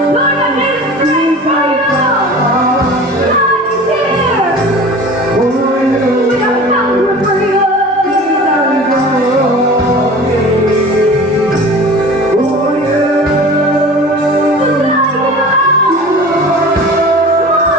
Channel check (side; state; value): both; normal; correlation 0.39